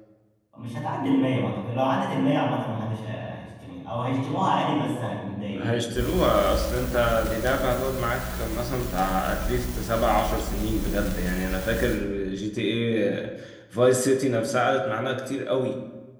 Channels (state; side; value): identical; both; correlation 1.00